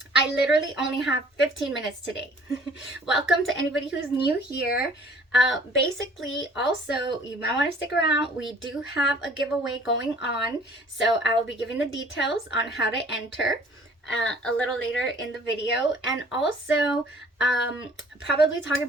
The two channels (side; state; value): both; normal; correlation 0.54